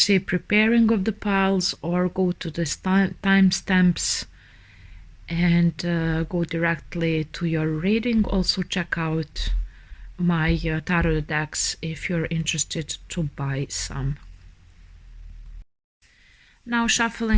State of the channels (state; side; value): identical; both; correlation 1.00